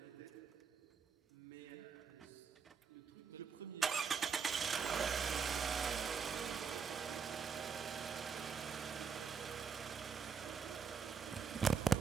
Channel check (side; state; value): left; quieter; 6.2 dB